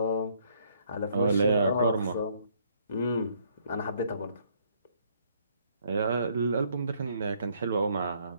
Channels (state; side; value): inverted; both; correlation -0.66